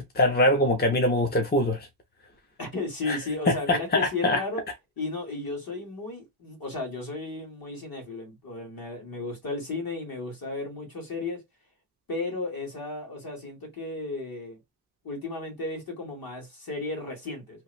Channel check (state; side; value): normal; both; correlation -0.08